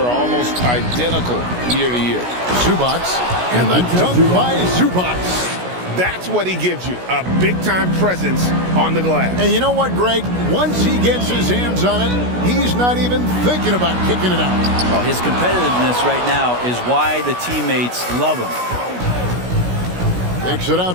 almost identical year to year. Zubac. And the dunk by Zubac. That's what he gives you, a big-time presence on the glass. And you know what, Greg? Once he gets his hands on it, he's not even thinking about kicking it out. Oh, his competitiveness right now is why the teammates love him. Kicks it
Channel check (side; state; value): left; late; 16 ms